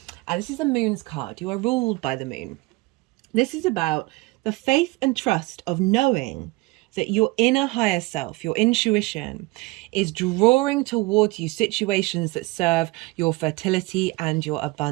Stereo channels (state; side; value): quieter; left; 22.8 dB